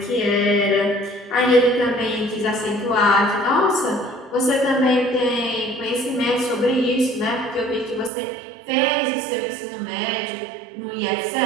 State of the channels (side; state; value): left; drops out; at 8.1 s